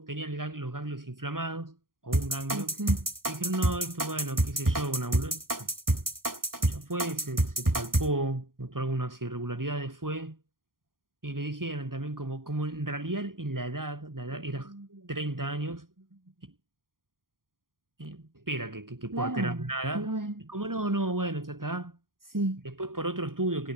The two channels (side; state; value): left; late; 0.91 ms